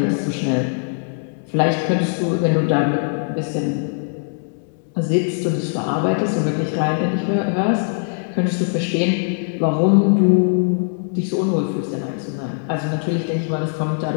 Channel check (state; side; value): silent; right; 65 dB below the other